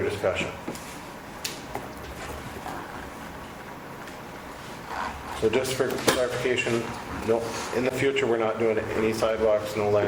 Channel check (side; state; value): both; identical; correlation 1.00